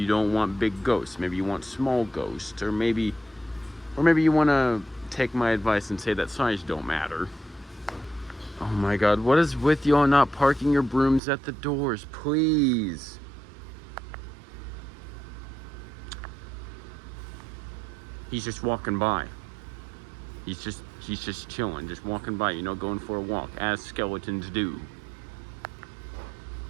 don't want big ghosts. Maybe you want small ghosts. Or maybe you want to take my advice and say that size don't matter. Oh my god, what is with y'all not parking your brooms at the doors? Please. He's just walking by. He's just chilling, just walking by, you know, going for a walk, as skeletons do.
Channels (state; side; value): drops out; left; at 11.2 s